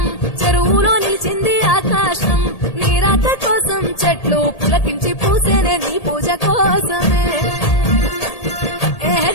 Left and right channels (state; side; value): late; right; 1.8 ms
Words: చెరువులో నిలిచింది ఆకాశం నీ రాక కోసం చెట్లు పులకించి పూసేనే నీ పూజ కోసమే